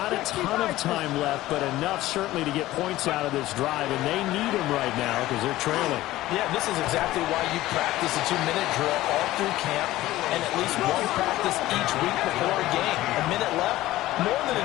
a ton of time left, but enough certainly to get points out of this drive, and they need them right now because they're trailing. Yeah, this is exactly why you practice a 2-minute drill all through camp and at least one practice each week before a game. A minute left, more than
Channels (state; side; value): quieter; right; 16.2 dB